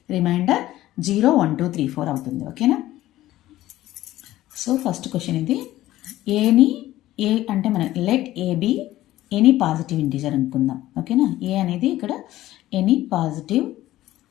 రిమైండర్ 0, 1, 2, 3, 4 అవుతుంది. ఓకేనా? సో ఫస్ట్ క్వశ్చన్ ఇది. ఏ అంటే మనం let A be any positive integer అనుకుందాం. ఓకేనా? ఏ అనేది ఇక్కడ ఎనీ పాజిటివ్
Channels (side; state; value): right; quieter; 15.1 dB